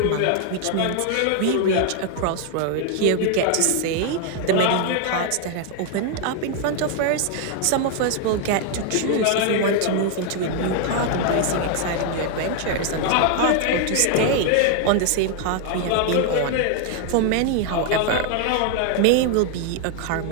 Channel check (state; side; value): different; both; correlation 0.00